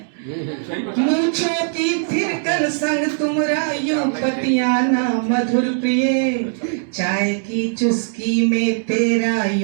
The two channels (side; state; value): left; silent; 66 dB below the other